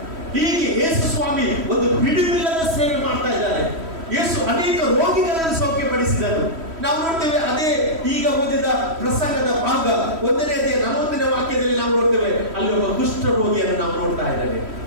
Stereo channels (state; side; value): late; left; 3.1 ms